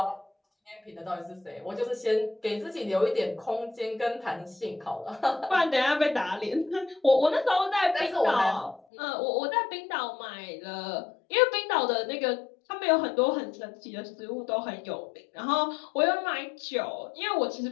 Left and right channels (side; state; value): right; drops out; at 8.8 s